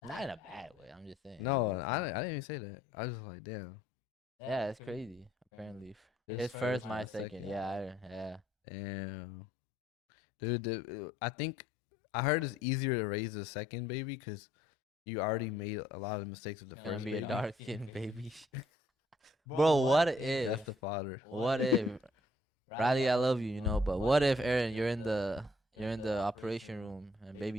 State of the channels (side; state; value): both; normal; correlation 0.65